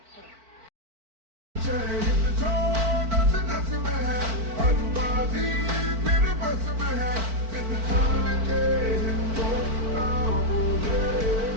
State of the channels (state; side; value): late; left; 4.5 ms